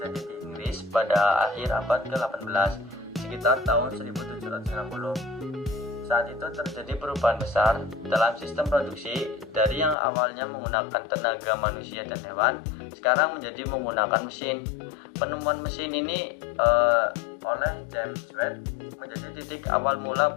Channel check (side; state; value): right; drops out; at 10.0 s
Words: di Inggris pada akhir abad ke-18, sekitar tahun 1790. Saat itu terjadi perubahan besar dalam sistem produksi dari yang awalnya menggunakan tenaga manusia dan hewan, sekarang menjadi menggunakan mesin. Penemuan mesin ini oleh James Watt menjadi titik awal mula